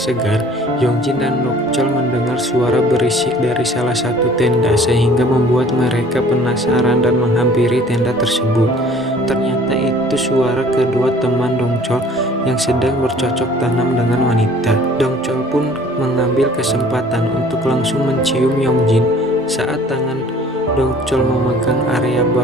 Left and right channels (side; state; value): both; normal; correlation 0.52